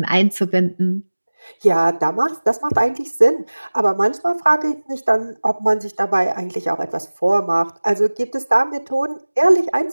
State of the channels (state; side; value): inverted; both; correlation -1.00